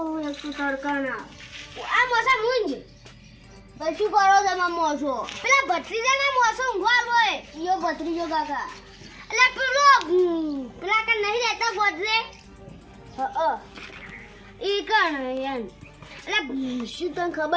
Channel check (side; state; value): both; identical; correlation 1.00